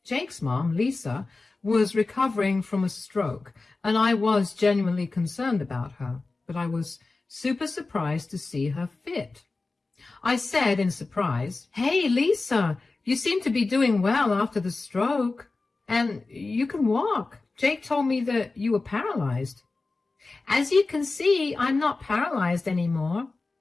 Jake's mom, Lisa, was recovering from a stroke, and I was genuinely concerned about her, but I was super surprised to see her fit. I said in surprise, "Hey, Lisa, you seem to be doing well after the stroke, and you can walk. Jake told me that you were paralyzed." "As you can see, I'm not paralyzed anymore."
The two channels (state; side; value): quieter; right; 3.6 dB